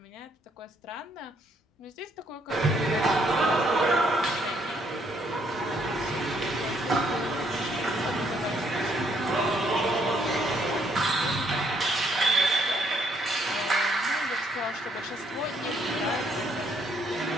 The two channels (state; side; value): normal; both; correlation 0.69